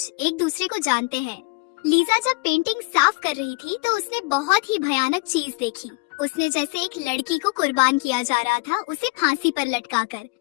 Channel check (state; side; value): quieter; right; 28.0 dB